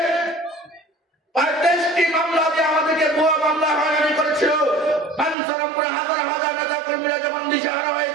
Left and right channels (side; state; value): left; drops out; at 5.4 s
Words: 35টি মামলা দিয়ে আমাদেরকে ভুয়া মামলা হয়রানি করেছিল, বাঞ্ছারামপুরে হাজার হাজার নেতা কর্মীরা যখন দিশাহারা